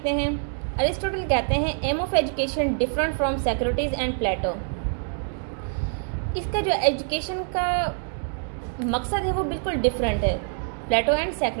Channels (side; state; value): left; silent; 61 dB below the other